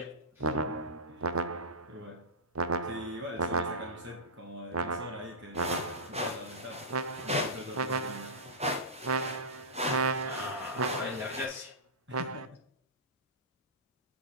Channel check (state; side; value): normal; both; correlation -0.17